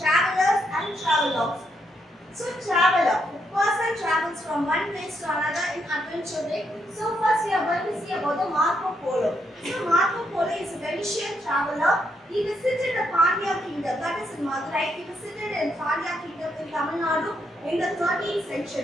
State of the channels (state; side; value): normal; both; correlation 0.78